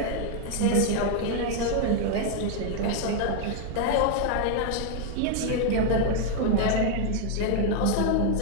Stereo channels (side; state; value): both; different; correlation 0.00